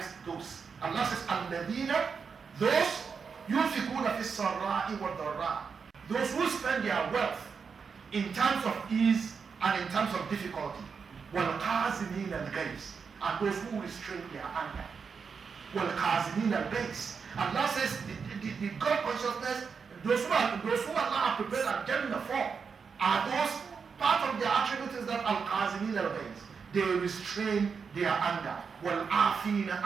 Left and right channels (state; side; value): quieter; left; 5.8 dB